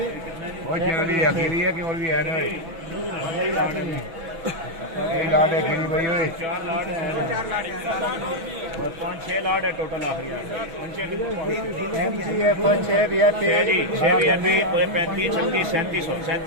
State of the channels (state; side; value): late; left; 6.1 ms